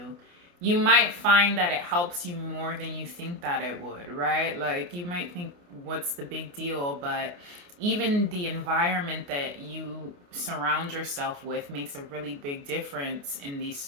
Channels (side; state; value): left; late; 29 ms